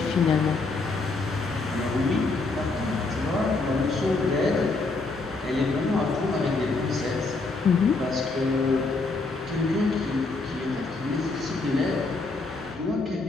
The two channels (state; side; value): quieter; right; 3.6 dB